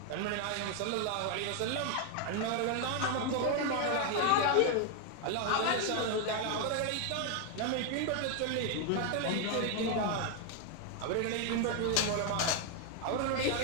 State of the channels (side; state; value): both; different; correlation 0.01